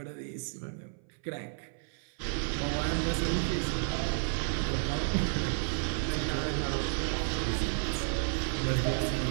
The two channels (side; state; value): left; silent; 56 dB below the other